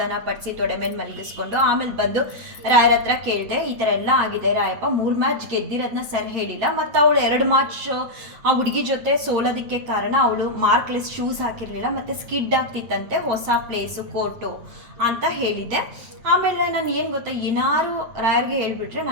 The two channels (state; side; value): late; left; 8.7 ms